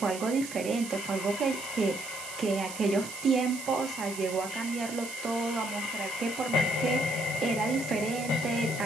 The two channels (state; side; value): noise; right; hiss, 11 dB below the sound